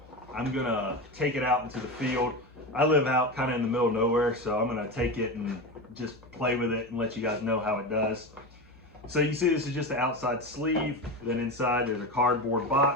I'm gonna take it out into the field. I live out kind of in the middle of nowhere, so I'm gonna take it and just play with it and let you guys know how it does. So you see this is just the outside sleeve, then inside there's a cardboard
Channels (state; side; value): normal; both; correlation 0.21